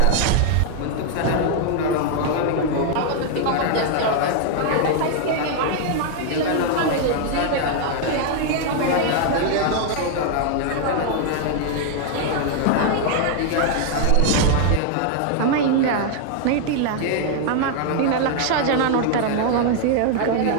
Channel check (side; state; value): both; different; correlation 0.00